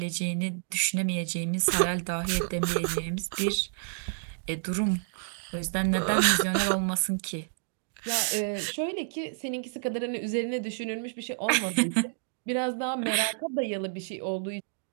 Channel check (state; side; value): silent; left; digital silence